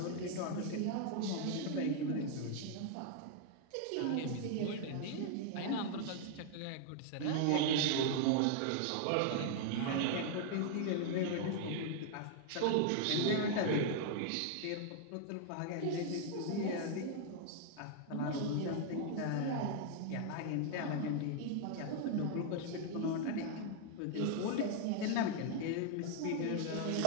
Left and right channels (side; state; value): both; different; correlation 0.00